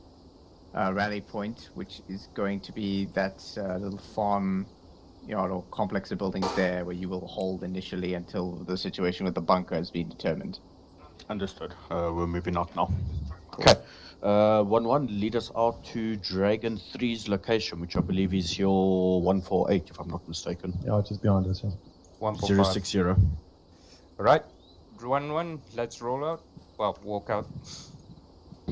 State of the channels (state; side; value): identical; both; correlation 1.00